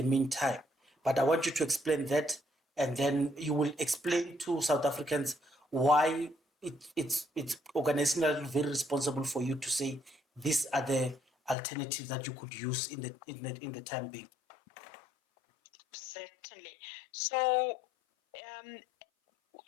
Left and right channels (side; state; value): right; drops out; at 11.6 s